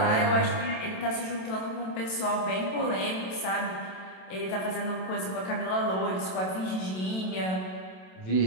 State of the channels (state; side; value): late; right; 27 ms